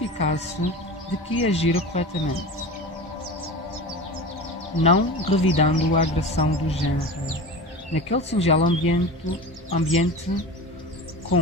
de que agira corretamente, não revidando a agressão do género. Naquele singelo ambiente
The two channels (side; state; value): both; normal; correlation 0.31